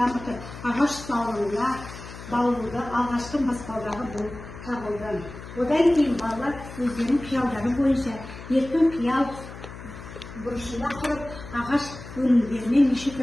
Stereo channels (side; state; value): left; noise; hum, 14 dB below the sound